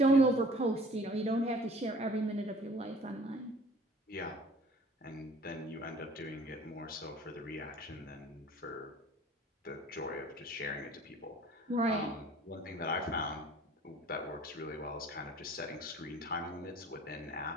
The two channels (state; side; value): normal; both; correlation 0.49